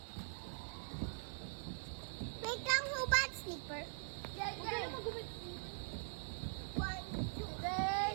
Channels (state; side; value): silent; left; digital silence